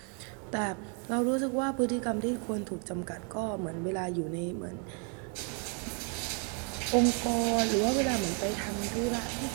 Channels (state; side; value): quieter; left; 39.1 dB